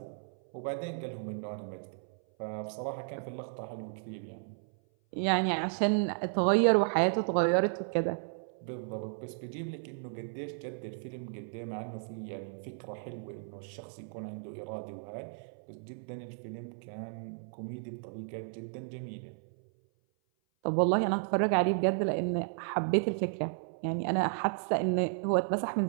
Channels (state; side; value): silent; left; 55 dB below the other